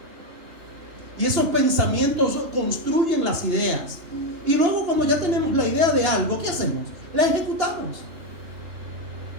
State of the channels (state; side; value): late; left; 2.9 ms